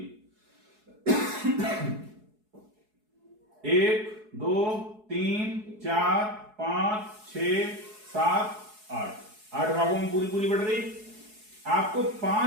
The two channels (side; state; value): left; late; 4.7 ms